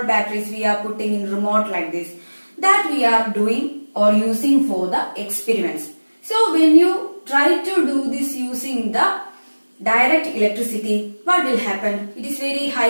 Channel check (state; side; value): inverted; both; correlation -1.00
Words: batteries we are putting in remote like this, that we are doing or using for the experiments. So when you try to do this using the direct electricity, what will happen? It is very